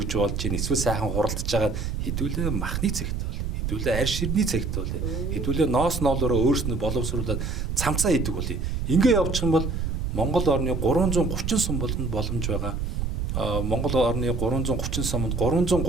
болж ийн эсвэл сайхан хуралдаж байгаа хэдүүлээ махны цэгт хэдүүлээ арь ширний цагт бол хэдүүлээ ноос ноолороо өөрснөө боловсруулаад цамцаа хийдэг бол ингээ явчих юм бол Монгол орны 330 сум болгонд боломж байгаа. Монгол орны 330 сумд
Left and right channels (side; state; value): right; noise; rumble, 2 dB below the sound